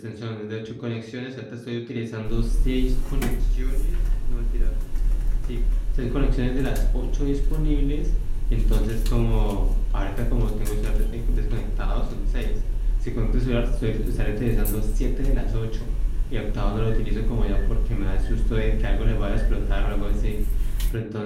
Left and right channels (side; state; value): both; identical; correlation 1.00